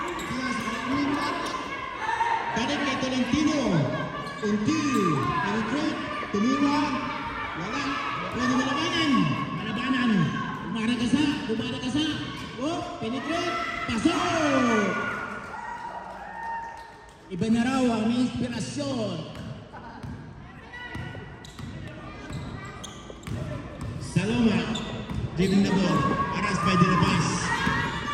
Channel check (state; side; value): identical; both; correlation 1.00